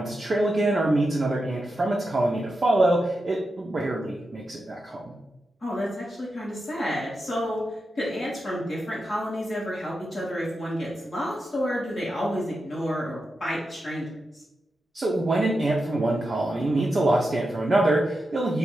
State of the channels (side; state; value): both; normal; correlation 0.89